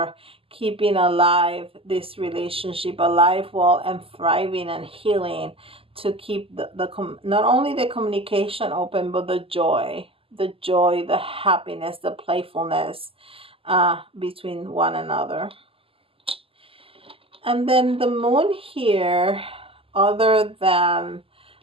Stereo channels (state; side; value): late; left; 0.26 ms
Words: keeping alive this relationship, alive, well, and thriving and healing, to keep not only the communication open, but the joy, the happiness, the playfulness between one another. And then the moon here, other than